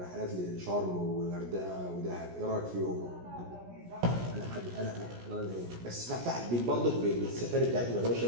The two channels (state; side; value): late; left; 17 ms